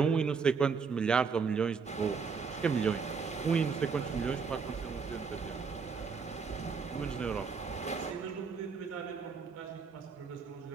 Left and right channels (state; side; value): quieter; left; 5.5 dB